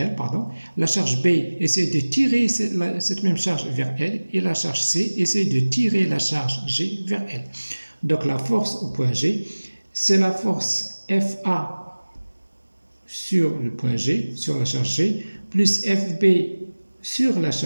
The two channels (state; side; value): inverted; both; correlation -1.00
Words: pardon. La charge B essaie de tirer cette même charge vers elle, et la charge C essaie de tirer la charge G vers elle. Donc, la force au point G, c'est la force FA sur le point G, sur la charge G, plus FB sur la